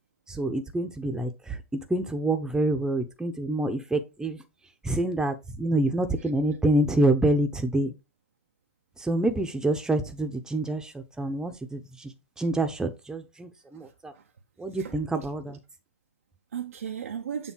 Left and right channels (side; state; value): both; normal; correlation 0.66